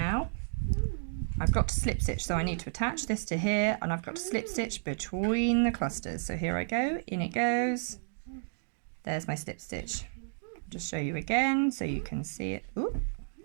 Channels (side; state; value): left; silent; digital silence